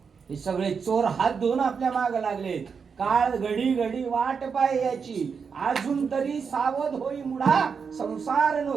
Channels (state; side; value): quieter; left; 5.9 dB